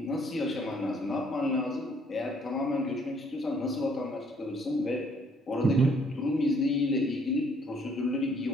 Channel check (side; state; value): both; normal; correlation 0.64